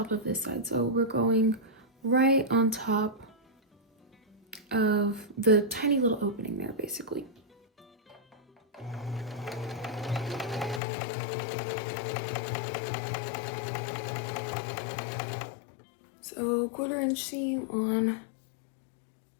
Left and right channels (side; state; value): right; drops out; at 10.8 s